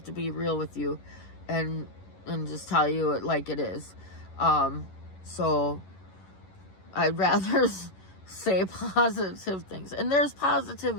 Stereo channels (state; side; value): late; right; 11 ms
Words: to be real with you and just tell you it like it is. So I'd rather say positive things, and there's